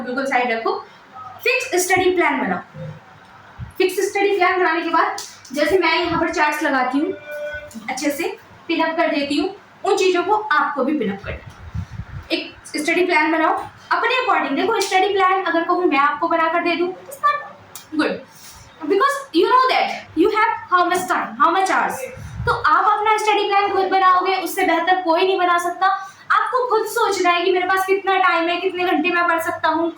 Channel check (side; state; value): both; identical; correlation 1.00